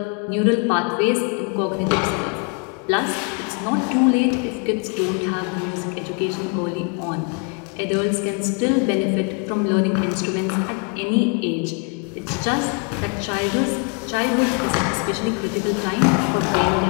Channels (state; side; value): quieter; right; 36.0 dB